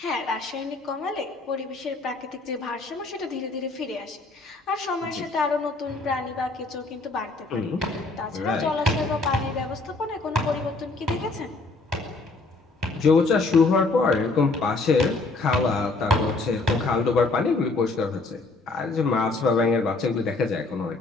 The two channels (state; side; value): quieter; right; 3.5 dB